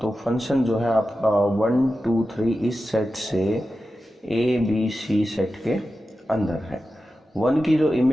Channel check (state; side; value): normal; both; correlation 0.92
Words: फंक्शन जो है आपका 1 2 3 इस सेट से ए बी सी सेट के अंदर है। 1 की जो